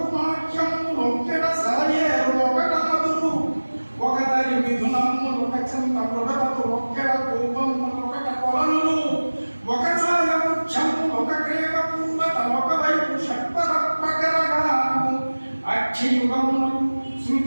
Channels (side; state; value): both; inverted; correlation -1.00